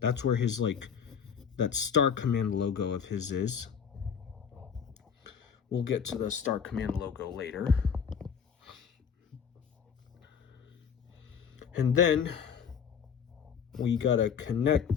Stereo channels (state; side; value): quieter; right; 7.1 dB